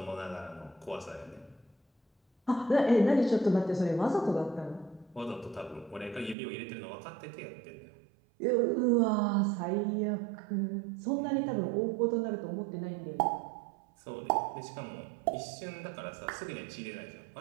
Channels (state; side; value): drops out; left; at 6.4 s